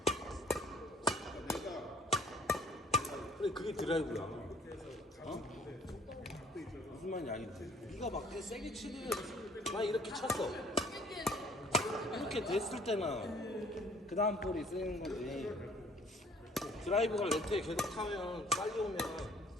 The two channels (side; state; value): both; normal; correlation 0.58